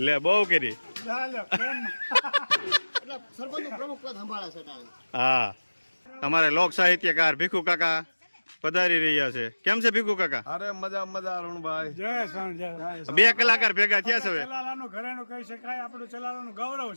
લે બહુ કરી. ચાલો, પ્રેમ. એટલે સરપંચનું પ્રમુખ પદ સંભાળે છે તારે. હા અમારે લોક સાહિત્યકાર ભીખુ કાકા પધારી રહ્યા છે. કેમ છે ભીખુ કાકા? અરે મજા મજા અરુણભાઈ. જય શ્યામ, જય. 2 કલાકાર ભેગા થયા છે હવે. ચલાલાનું ઘરેણું કહી શકાય, આપણું ચલાલાનું ગૌરવ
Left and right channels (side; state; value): both; inverted; correlation -1.00